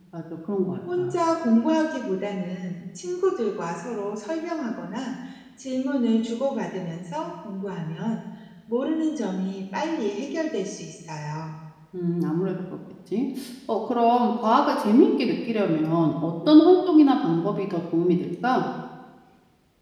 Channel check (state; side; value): identical; both; correlation 1.00